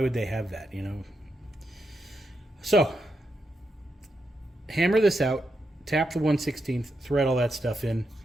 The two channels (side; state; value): both; normal; correlation 0.84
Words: they have that, you know? So, hammer this out, tap the 1/16, thread all that stuff in,